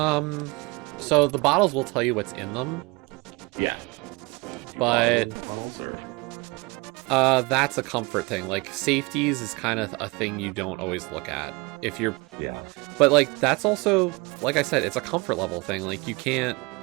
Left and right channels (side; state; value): left; quieter; 26.1 dB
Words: So the bottles will tell you what's in them, Yeah. but Bottles or that's a comfort thing. Like safeties is kind of a thing you don't always look at if you're. yeah. But like that's also, like I said, it's a comfort level thing. Like you can't